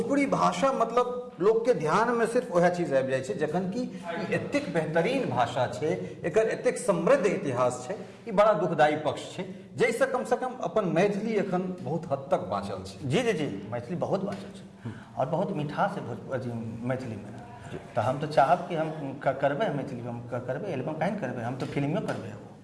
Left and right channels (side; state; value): both; identical; correlation 1.00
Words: भाषा मतलब लोग के ध्यान में सिर्फ वह चीज आबि जाइ छै, जखन कि एतेक बेहतरीन भाषा छै, एकर एतेक समृद्ध इतिहास छै, ई बड़ा दुखदायी पक्ष छै, जैसे कम से कम अपन मैथिली एखन बहुत हद तक बाँचल छै। जी जी जी, मैथिली बहुत बाँचल छै, और बहुत मिठास है मैथिली में। तो हम तो चाहब कि हम करबे मैथिली में, हम करबे एल्बम कहीं करबे, हम तो फिल्मियो करबे,